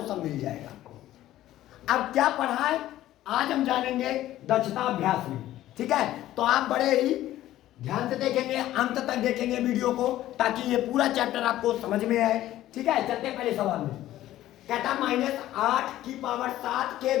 सब मिल जाएगा। अब क्या पढ़ा है आज हम जानेंगे दक्षता अभ्यास में, ठीक है। तो आप बड़े ही ध्यान से देखेंगे, अंत तक देखेंगे वीडियो को ताकि ये पूरा चैप्टर आपको समझ में आए, ठीक है। चलते पहले सवाल में। कहता -8 की पावर 7 के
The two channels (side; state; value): right; quieter; 14.1 dB